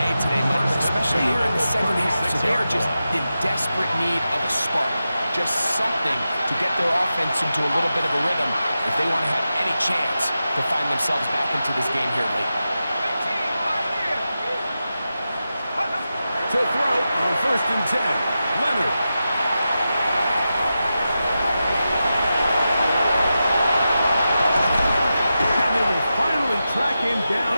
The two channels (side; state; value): both; inverted; correlation -0.91